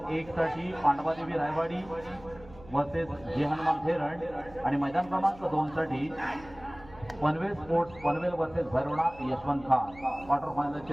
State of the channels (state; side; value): noise; right; hum, 21 dB below the sound